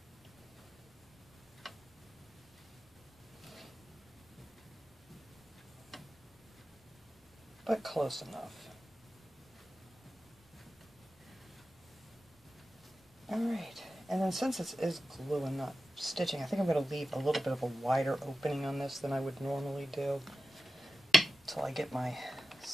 But close enough. Alright, and then since this is glue and not stitching, I think I'm going to leave a little bit of a wider opening on this than I would normally do until I get my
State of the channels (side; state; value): both; normal; correlation 0.94